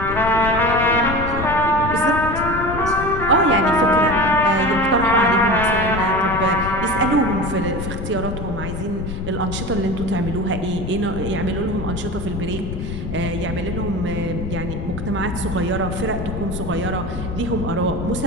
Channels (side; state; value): left; noise; rumble, 6 dB below the sound